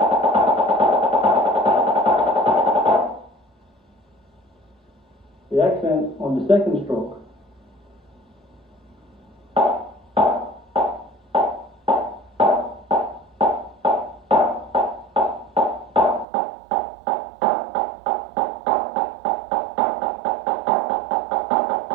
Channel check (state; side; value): drops out; left; at 16.2 s